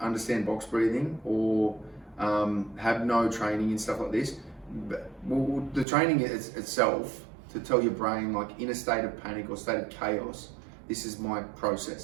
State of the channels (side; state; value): left; drops out; at 5.9 s